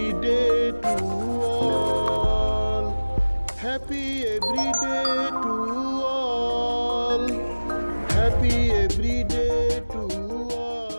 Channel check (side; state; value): both; inverted; correlation -1.00